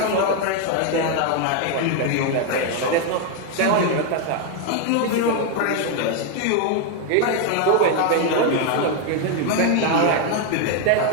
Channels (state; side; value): different; both; correlation 0.01